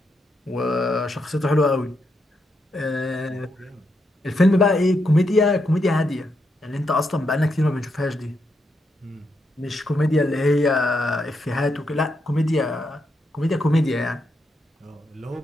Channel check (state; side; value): normal; both; correlation 0.81